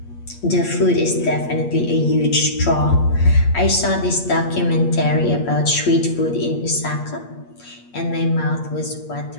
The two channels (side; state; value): right; late; 8.5 ms